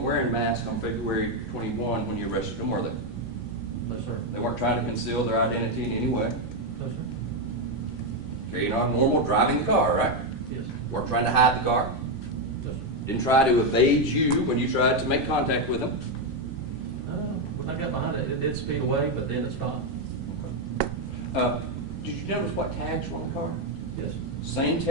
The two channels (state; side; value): normal; both; correlation 0.05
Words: wearing masks on February 21 when you arrested them, were they? No, sir. They weren't trying to conceal their identity in any way. No, sir. Carrying on normal, driving the car, right? Yes. Weren't trying to hide the car. No, sir. Didn't try to evade you when you tried to make contact with them. When I got behind it, it did speed away, but then it stopped. Did you notice what tags were on the car? Yes. Same